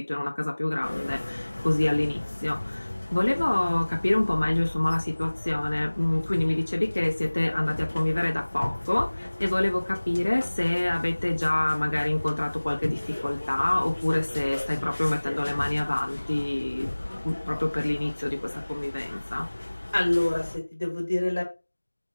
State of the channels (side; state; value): both; inverted; correlation -1.00